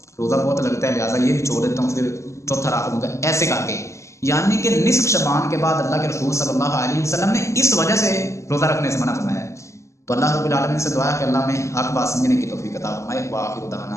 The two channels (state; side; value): late; right; 0.14 ms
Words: روزہ بہت لگتا ہے لہٰذا یہ بھی چھوڑ دیتا ہوں، پھر چوتھا رکھ لوں گا، ایسے کر کے۔ یعنی کہ نصف شعبان کے بعد اللہ کے رسول صلی اللہ علیہ وسلم نے اس وجہ سے روزہ رکھنے سے منع فرمایا ہے۔ تو اللہ رب العالمین سے دعا ہے کہ اللہ میں حق بات سمجھنے کی توفیق عطا فرمائے۔ وآخر